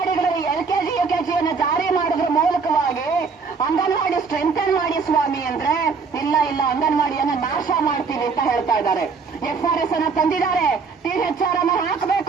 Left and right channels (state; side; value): quieter; left; 5.1 dB